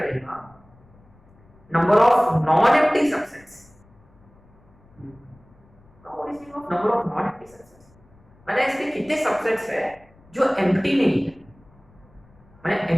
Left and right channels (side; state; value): left; noise; rumble, 28 dB below the sound